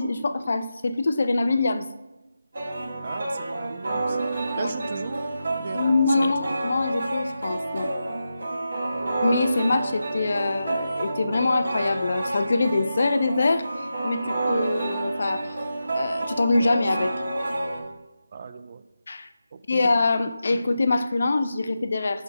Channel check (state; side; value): inverted; both; correlation -0.90